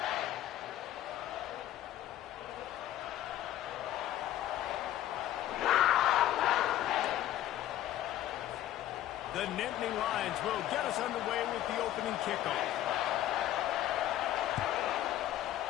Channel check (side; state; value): right; quieter; 13.1 dB